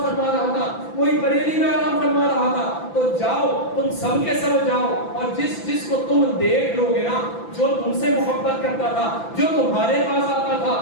رہا تھا، کوئی بریلی میں آرام فرما رہا تھا۔ تو جاؤ تم سب کے سب جاؤ، اور جس کو تم دیکھ لو گے نا، جو تم سے محبت کرتا تھا، جو تمہارے پاس آتا تھا،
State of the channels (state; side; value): late; right; 5.9 ms